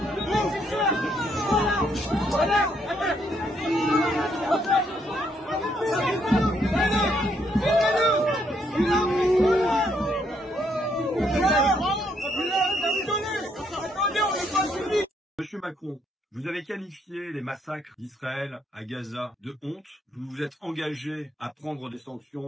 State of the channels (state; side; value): normal; both; correlation 0.72